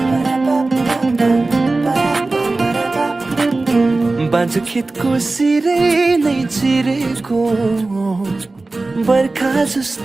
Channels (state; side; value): quieter; left; 3.3 dB